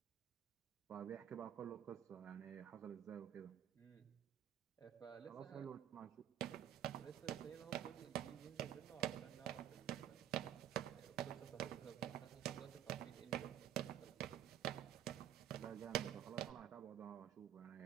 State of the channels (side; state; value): left; quieter; 10.7 dB